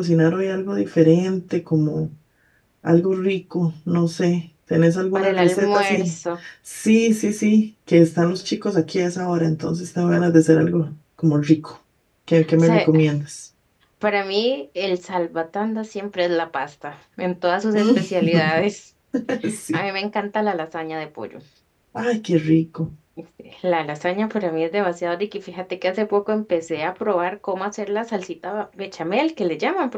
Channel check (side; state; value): both; identical; correlation 1.00